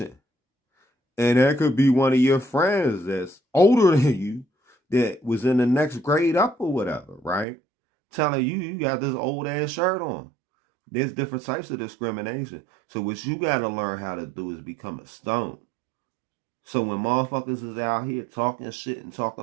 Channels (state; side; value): drops out; left; at 7.5 s